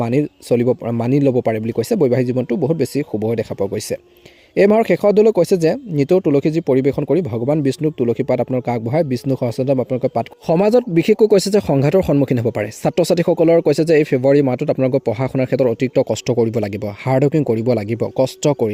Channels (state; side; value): identical; both; correlation 1.00